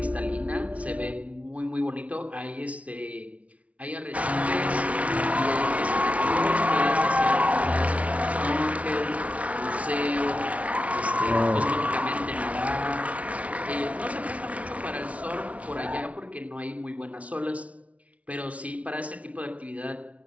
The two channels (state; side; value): late; left; 0.066 ms